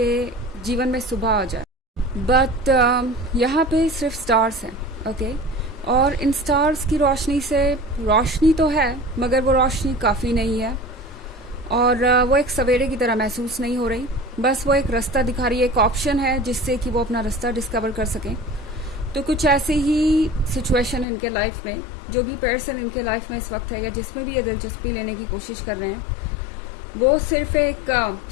जीवन में सुबह आ जाए, बट यहाँ पे सिर्फ स्टार्स हैं। ओके, और इन स्टार्स की रोशनी से रोशनी तो है मगर वो रोशनी काफ़ी नहीं है और वो एक सवेरे की तरह महसूस नहीं हो रही। बस वो एक रास्ता दिखा रही है, एक ऑप्शन है जिससे कि वो अपना रास्ता डिस्कवर कर सकें। तो कुछ ऐसी ही सिचुएशन इनके लाइफ में, जो भी पर्सन इनके लाइफ में इस वक्त है या जिसमें भी ये दिलचस्पी लेने की कोशिश कर रहे हैं, वो सिर्फ एक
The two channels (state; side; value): drops out; right; at 21.1 s